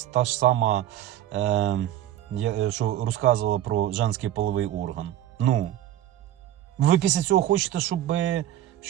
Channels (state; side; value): quieter; left; 12.6 dB